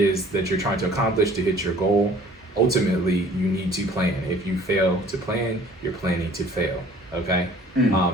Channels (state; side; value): normal; both; correlation 0.52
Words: that you're trying to accomplish to hit your goal, ultimately you need to plan. If you fail to plan, you're planning to fail. Okay.